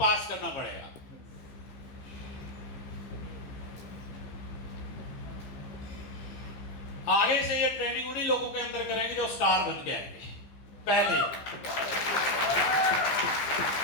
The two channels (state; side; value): late; right; 15 ms